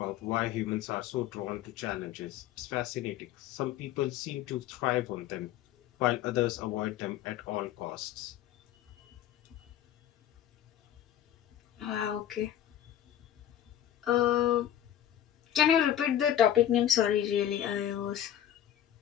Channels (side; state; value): right; quieter; 11.2 dB